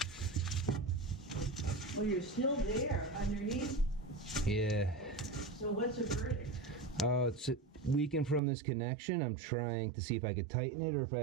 Well, you're still there underneath. Yeah. So what's the verdict? Oh, it's leaking from this connection. I'm trying to see if I could tighten it or if I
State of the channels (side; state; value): left; drops out; at 8.4 s